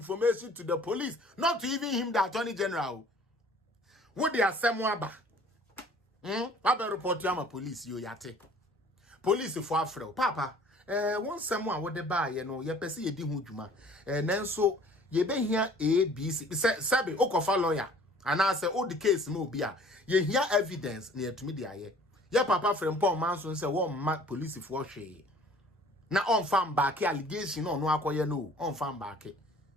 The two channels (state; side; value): normal; both; correlation 0.52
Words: to the police, not to even him, the Attorney General. What they are saying, Papa report to my police, you yate. Police for Afro. Papa, once someone would buy, you know, you perceive a dihujuma, and then so ye be here A, B, C, Sabi, Okofa lawyer, and I say, oh, the case mo be ye hear evidence near to me, the ya papa Frimpong Manson say, one mark police for she. Now on farm back allegation no akoye no on farm back